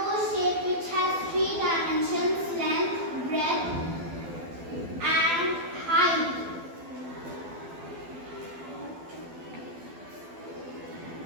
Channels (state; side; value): late; left; 12 ms